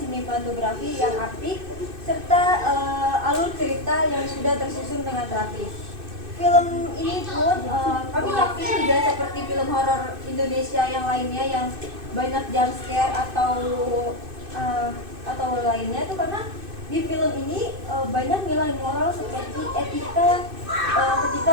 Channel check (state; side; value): late; left; 2.6 ms